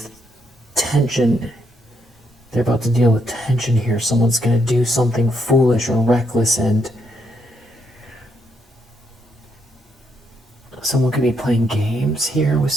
tension. They're about to deal with tension here. Someone's going to do something foolish or reckless, and someone could be playing games here with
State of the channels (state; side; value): normal; both; correlation 0.76